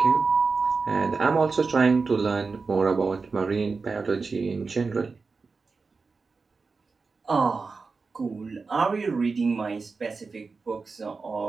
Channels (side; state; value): left; quieter; 4.4 dB